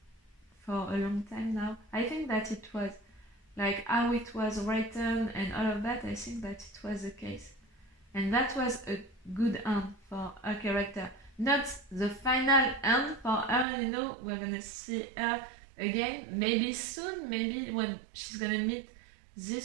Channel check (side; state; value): left; drops out; at 13.7 s